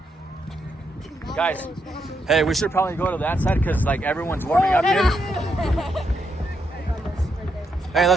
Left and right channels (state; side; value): normal; both; correlation 0.80